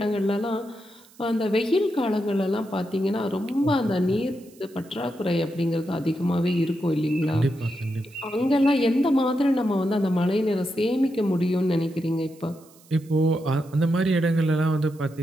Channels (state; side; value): noise; right; hiss, 27 dB below the sound